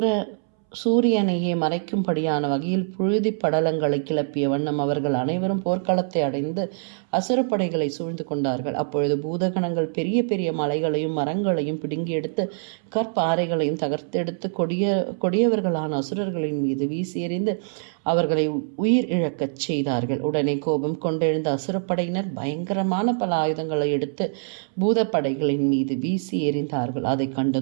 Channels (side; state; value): left; silent; 63 dB below the other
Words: சூரியனையே மறைக்கும்படியான வகையில் புழுதி படலங்களை கிளப்பிய வண்ணம் அவர்கள் அனைவரும் போர்க்களத்தை அடைந்து அசுரப்படைகளை சூழ்ந்து கொண்டார்கள். அப்பொழுது பூதகணங்கள் பெரிய பெரிய மலைகளையும் மரங்களையும் பிடுங்கி எடுத்து கற்பாறைகளையும் தகர்த்தெடுத்து கொடியவர்களான அசுரர்களின் மீது வீசி எறிந்து அவர்களை உயிர் இழக்கச் செய்தார்கள். உடனே கோபம் கொண்டெழுந்த அசுரப்படையினர் பயங்கரமான பல ஆயுதங்களை எடுத்து பூதப்படைகளின் மீது வீசி எறிந்தார்கள். அதை